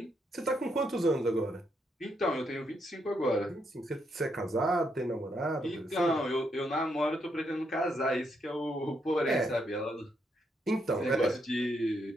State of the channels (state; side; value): normal; both; correlation 0.77